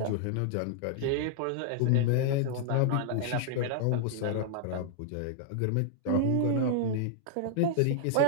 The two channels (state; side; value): different; both; correlation -0.01